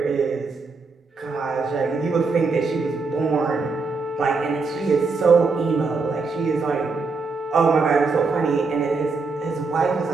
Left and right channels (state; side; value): quieter; left; 4.2 dB